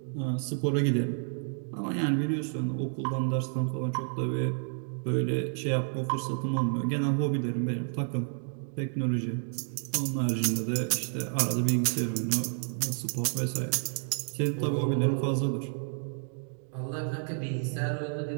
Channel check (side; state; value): left; silent; digital silence